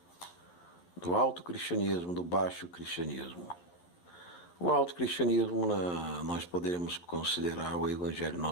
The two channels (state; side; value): late; right; 11 ms